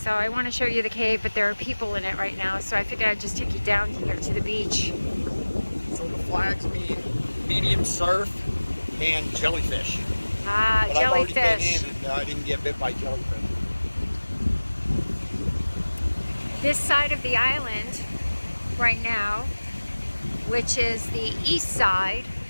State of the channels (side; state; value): both; inverted; correlation -1.00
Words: I want to show you the cave, but there are people in it right now, so I figured I'd just take you down here to the beach. So the flags mean medium surf and jellyfish. Ah, but jellyfish. I've already been in and I didn't get bit by jellyfish. This side of the island right now, which is the east side,